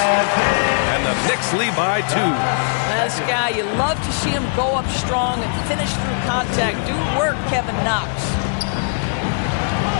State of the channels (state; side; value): silent; right; digital silence